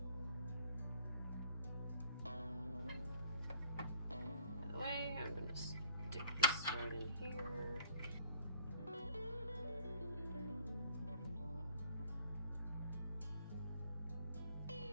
I'm going to stick this right in here.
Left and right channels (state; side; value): inverted; both; correlation -0.60